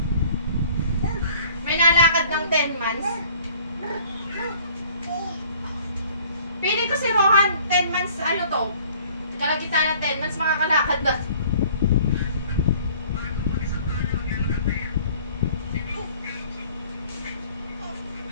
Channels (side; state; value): both; inverted; correlation -0.54